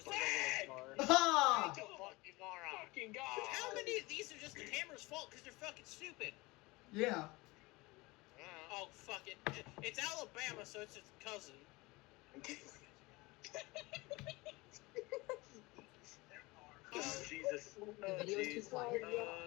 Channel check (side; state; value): right; quieter; 22.8 dB